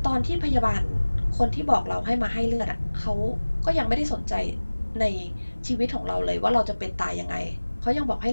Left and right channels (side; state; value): both; inverted; correlation -1.00